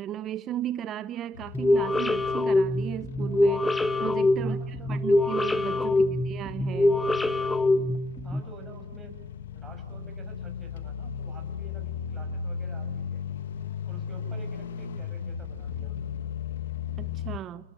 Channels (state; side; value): normal; both; correlation 0.73